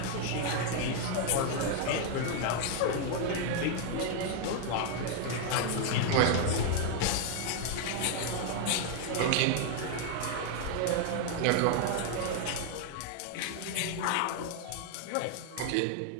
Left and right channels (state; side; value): different; both; correlation 0.00